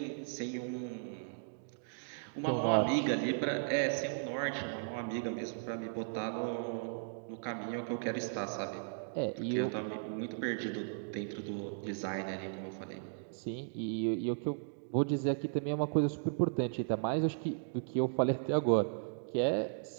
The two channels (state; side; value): silent; left; digital silence